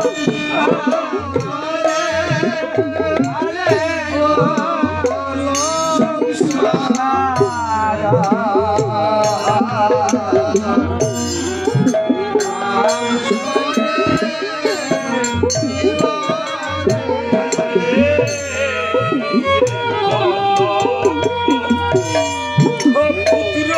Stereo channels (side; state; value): both; identical; correlation 1.00